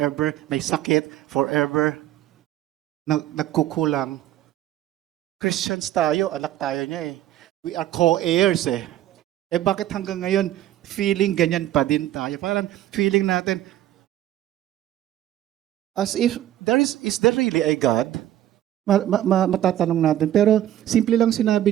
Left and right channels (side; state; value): left; quieter; 12.8 dB